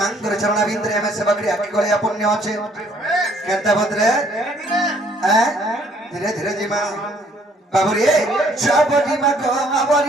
চরণাবিন্দরে আমি সেবকরি আকি গলে পুণ্য আছে কেনতা ভদ্রে ধীরে ধীরে জিমা বাবুরে সবরি মা গো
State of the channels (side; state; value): both; normal; correlation 0.63